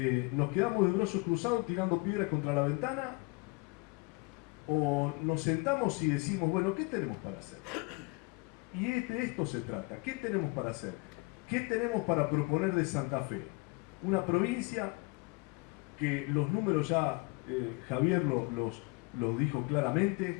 nos quedamos de brazos cruzados tirando piedras contra la ventana, o nos sentamos y decimos, bueno, ¿qué tenemos para hacer? Y de esto se trata, ¿qué tenemos para hacer? ¿Qué tenemos para proponer de Santa Fe? Una provincia que los números ya Javier los dijo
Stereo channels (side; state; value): right; quieter; 28.3 dB